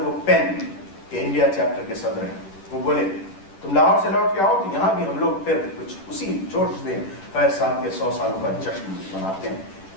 वो पेन के इंडिया चैप्टर के सदर हैं। वो बोले, तुम लाहौर से लौट के आओ तो यहाँ भी हम लोग फिर कुछ उसी जोश से फैज़ साहब के 100 सालों का जश्न मनाते हैं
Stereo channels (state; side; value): late; right; 10 ms